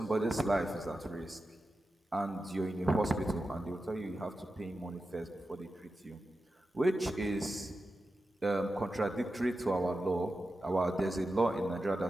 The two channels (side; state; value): both; normal; correlation 0.91